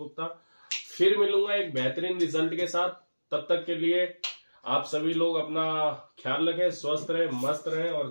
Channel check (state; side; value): inverted; both; correlation -1.00